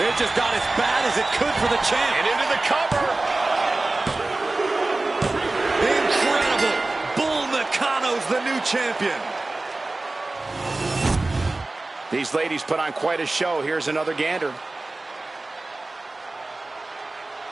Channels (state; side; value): quieter; left; 3.0 dB